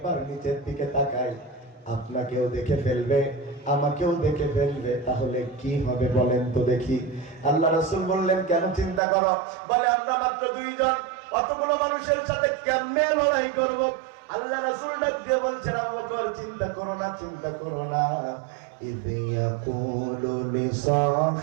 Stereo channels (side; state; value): left; drops out; at 9.0 s